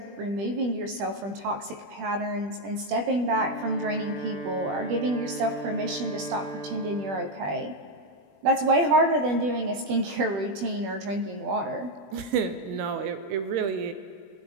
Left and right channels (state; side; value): late; left; 20 ms